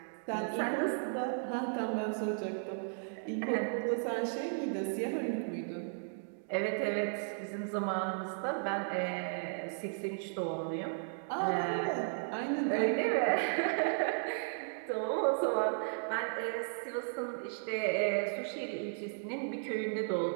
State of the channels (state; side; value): silent; left; digital silence